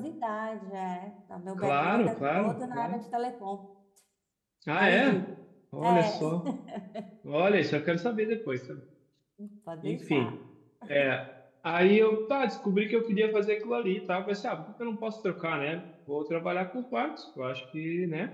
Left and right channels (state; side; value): identical; both; correlation 1.00